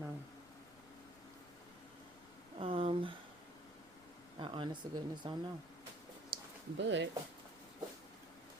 I honest to goodness don't know. But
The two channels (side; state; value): left; noise; rumble, 23 dB below the sound